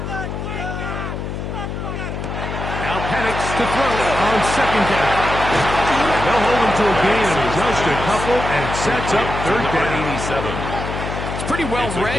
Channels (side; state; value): left; noise; hum, 5 dB below the sound